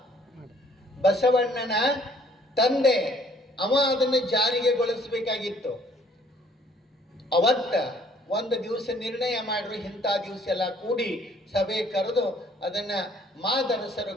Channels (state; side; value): normal; both; correlation 0.60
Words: ಬಸವಣ್ಣನ ತಂದೆ, ಅವ ಅದನ್ನು ಜಾರಿಗೆಗೊಳಿಸಬೇಕಾಗಿತ್ತು. ಅವತ್ತ ಒಂದು ದಿವಸ ನಿರ್ಣಯ ಮಾಡ್ರು, ಇಂಥ ದಿವಸ ಎಲ್ಲ ಕೂಡಿ ಸಭೆ ಕರೆದು ಅದನ್ನು ಮಾದರಸರ